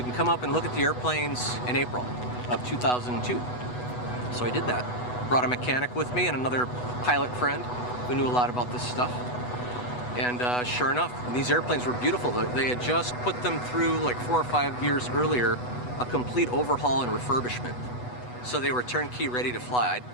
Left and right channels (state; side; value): late; right; 8.1 ms